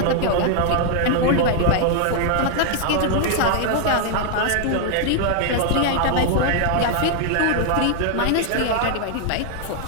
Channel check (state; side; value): different; both; correlation 0.00